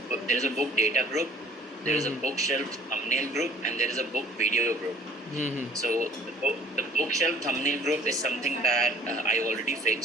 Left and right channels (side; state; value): both; normal; correlation 0.53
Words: data group, there is a bookshelf thumbnail group, and there is a book video group. So the bookshelf thumbnail group is something that I already